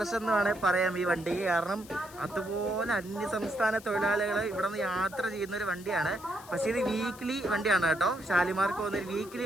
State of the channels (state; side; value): noise; left; hiss, 20 dB below the sound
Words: എന്ന് വേണമെങ്കിൽ പറയാം ഈ വണ്ടിക്ക്. കാരണം അതുപോലെ അന്യസംസ്ഥാന തൊഴിലാളികൾ ഇവിടെ നിന്ന് യാത്ര ചെയ്യുന്ന ഒരു വണ്ടിയാണ്. പക്ഷേ ഇത് വീക്ക്ലി വണ്ടിയാണ് കേട്ടോ. ഷാലിമാർക്ക് പോകുന്നൊരു വീക്ക്ലി